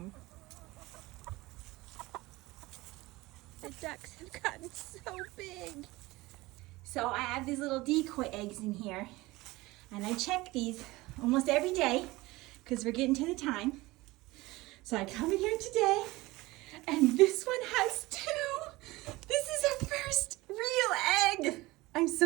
The ducks have gotten so big. So I have these little decoy eggs in here, and I check these almost every day because we're getting to the time. So I come in here today, and this one has 2. This is our first real egg. I'm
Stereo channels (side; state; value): left; quieter; 20.5 dB